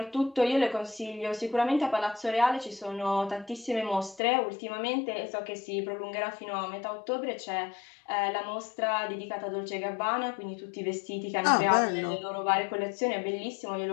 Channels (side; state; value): right; drops out; at 4.2 s